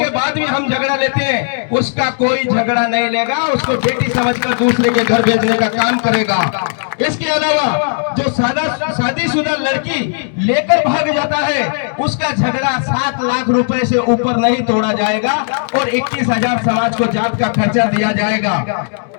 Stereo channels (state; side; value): silent; right; digital silence